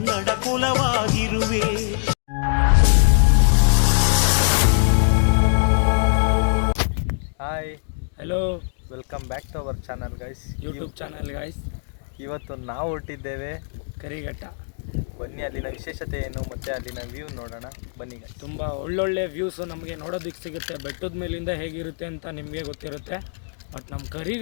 ಕುಲವಾಗಿರುವೆ. Hi, hello, welcome back to our channel guys, YouTube channel guys. ಇವತ್ತು ನಾವು ಹೊರಟಿದ್ದೇವೆ ಕರಿಘಟ್ಟ. ಬನ್ನಿ ಅಲ್ಲಿನ ವಿಶೇಷತೆ ಏನು ಮತ್ತು ಅಲ್ಲಿನ ವ್ಯೂ ನೋಡೋಣ. ಬನ್ನಿ ಗೈಸ್. ತುಂಬ ಒಳ್ಳೊಳ್ಳೆ ವ್ಯೂಸು ನಮಗೆ ನೋಡೋದಕ್ಕೆ ಸಿಗುತ್ತೆ. ಬೆಟ್ಟದ ಮೇಲಿಂದ ಹೇಗಿರುತ್ತೆ ಅಂತ ನಿಮಗೆ ಗೊತ್ತಿರುತ್ತೆ, ಬಟ್ ನಮ್ಮ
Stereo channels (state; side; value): silent; right; digital silence